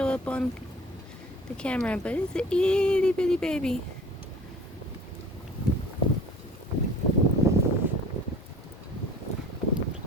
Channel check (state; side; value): normal; both; correlation 0.46